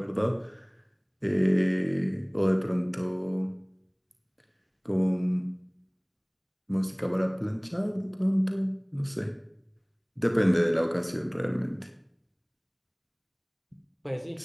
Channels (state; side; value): identical; both; correlation 1.00